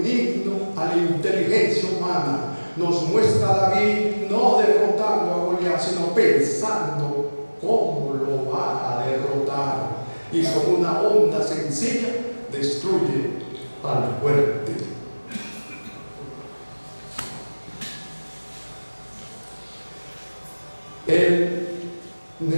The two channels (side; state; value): both; inverted; correlation -1.00